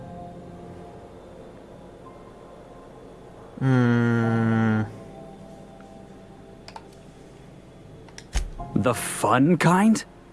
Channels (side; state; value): both; identical; correlation 1.00